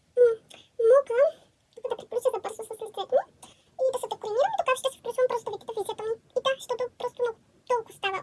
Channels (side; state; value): both; identical; correlation 1.00